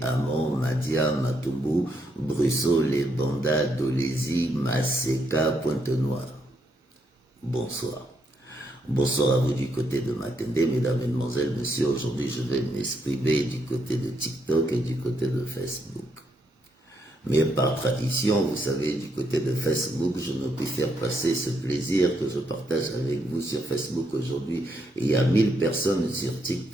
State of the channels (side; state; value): both; normal; correlation 0.77